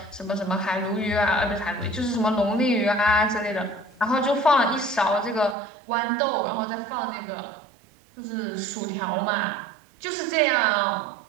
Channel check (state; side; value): drops out; left; at 5.6 s